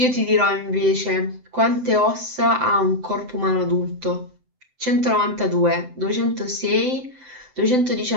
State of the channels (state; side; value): late; left; 7.8 ms